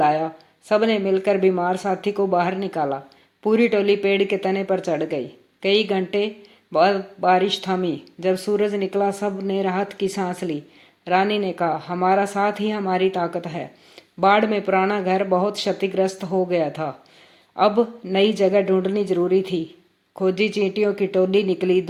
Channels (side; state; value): both; identical; correlation 1.00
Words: सबने मिलकर बीमार साथी को बाहर निकाला। पूरी टोली पेड़ के तने पर चढ़ गई। कई घंटे बाद बारिश थमी। जब सूरज निकला, सब ने राहत की सांस ली। रानी ने कहा, हमारा साथ ही हमारी ताकत है। बाढ़ में पुराना घर बहुत क्षतिग्रस्त हो गया था। अब नई जगह ढूंढनी जरूरी थी। खोजी चींटियों की टोली निकली।